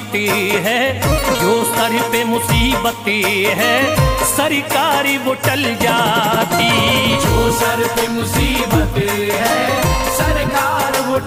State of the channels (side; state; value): both; identical; correlation 1.00